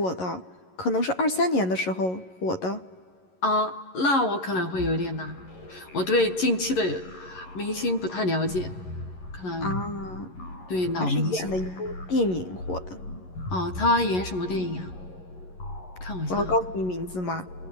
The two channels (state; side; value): late; right; 11 ms